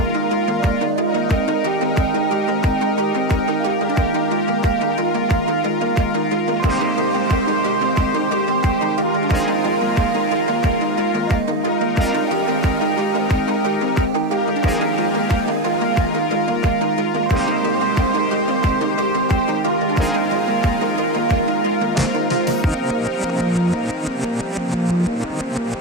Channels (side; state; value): both; normal; correlation 0.19